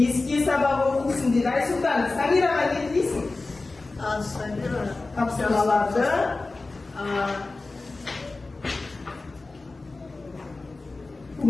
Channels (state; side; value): quieter; right; 3.4 dB